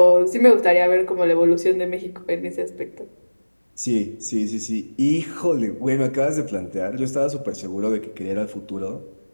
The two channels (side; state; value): both; inverted; correlation -1.00